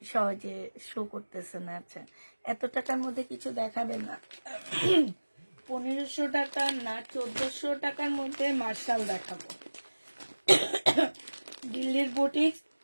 সহজে শো করতেছে না। আচ্ছা, এত টাকার মধ্যে কিছু দেখাবে না? 1500 টাকা না 1400 টাকার মধ্যে মার্শাল দেখাবো। দিল্লির বুটিক্স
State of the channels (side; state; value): both; inverted; correlation -1.00